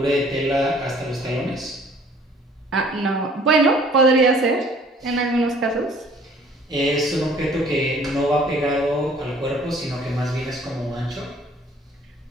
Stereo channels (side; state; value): both; normal; correlation 0.56